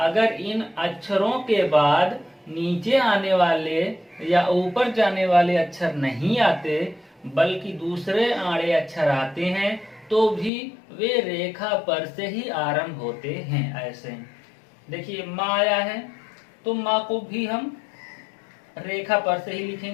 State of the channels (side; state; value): right; drops out; at 10.5 s